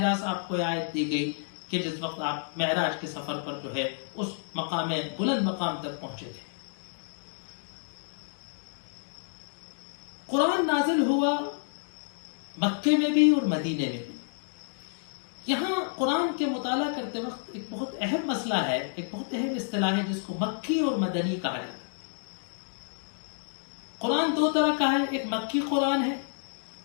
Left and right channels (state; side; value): silent; right; digital silence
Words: راست آپ کو آیت دی گئی کہ جس وقت آپ معراج کے سفر پر جو ہے اس بلند مقام تک پہنچے تھے. قرآن نازل ہوا مکے میں بھی اور مدینے میں بھی. یہاں قرآن کے مطالعہ کرتے وقت ایک بہت اہم مسئلہ ہے، ایک بہت اہم اصطلاح ہے جس کو مکی اور مدنی کہا جاتا ہے. قرآن 2 طرح کا ہے، ایک مکی قرآن ہے